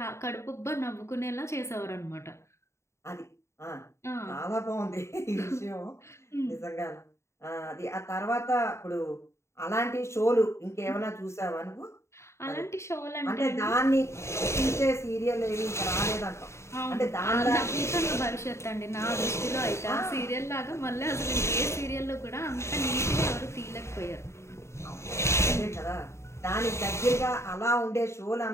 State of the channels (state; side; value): late; right; 0.13 ms